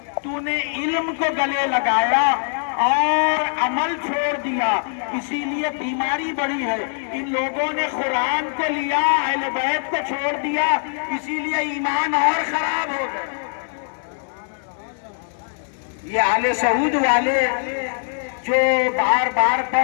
तूने इल्म को गले लगाया और अमल छोड़ दिया, इसीलिए बीमारी बढ़ी है। इन लोगों ने कुरान को लिया, अहले बैत को छोड़ दिया, इसीलिए ईमान और खराब हो गए। ये आले सऊद वाले जो बार बार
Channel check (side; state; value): right; silent; digital silence